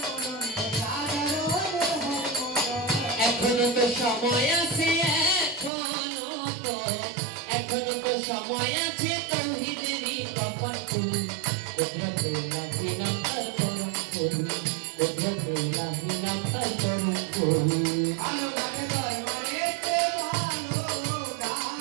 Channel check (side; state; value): left; drops out; at 5.7 s